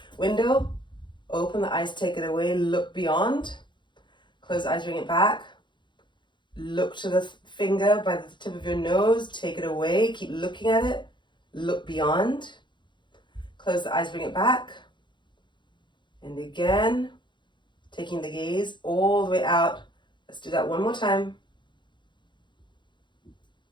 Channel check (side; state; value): right; late; 0.23 ms